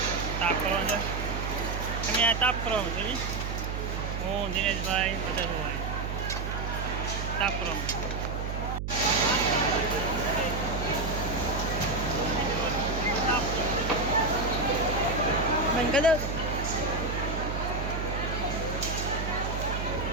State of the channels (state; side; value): noise; right; hum, 3 dB below the sound